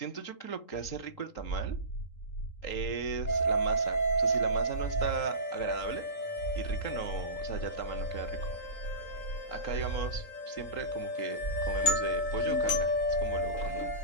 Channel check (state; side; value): late; right; 3.8 ms